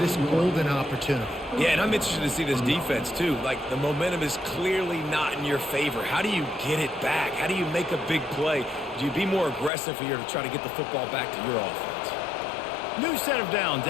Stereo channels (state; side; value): drops out; right; at 9.7 s